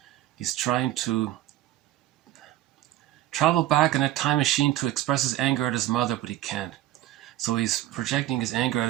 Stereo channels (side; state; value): left; quieter; 14.0 dB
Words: He's trying to travel back in a time machine to express his anger at his mother, but he can't. So he's projecting his anger at